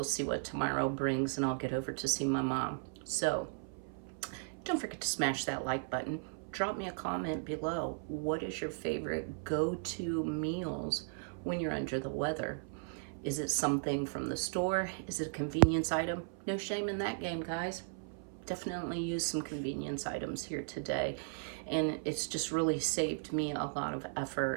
see what tomorrow brings, and I'll get over to see my mom. So don't forget to smash that like button. Drop me a comment below. What is your favorite go-to meals when you're under the weather? Is it something from the store? Is it a convenience item? No shame in that game, guys. Definitely use some convenience items here today. And it's just really saved me a lot of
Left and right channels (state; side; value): silent; left; 54 dB below the other